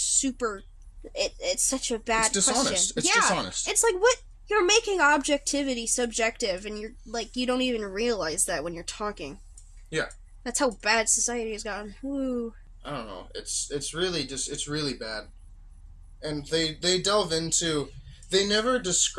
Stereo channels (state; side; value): identical; both; correlation 1.00